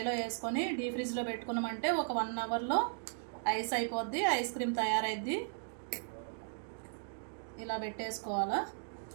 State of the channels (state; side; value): silent; left; digital silence